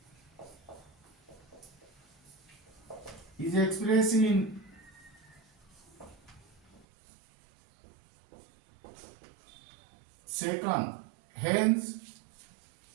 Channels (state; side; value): drops out; left; at 6.9 s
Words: is expressed in second. Hence,